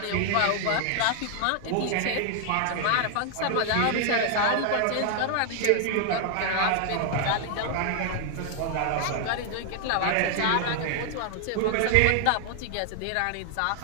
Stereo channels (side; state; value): both; different; correlation 0.00